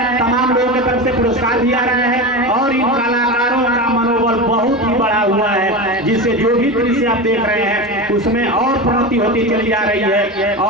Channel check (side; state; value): both; normal; correlation 0.24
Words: तमाम लोगों की तरफ से पुरस्कार भी आ रहा है और इन कलाकारों का मनोबल बहुत ही बढ़ा हुआ है, जिससे जो भी दृश्य आप देख रहे हैं उसमें और प्रगति होती चली जा रही है